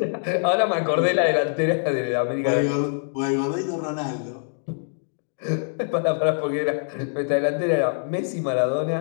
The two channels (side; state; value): right; silent; digital silence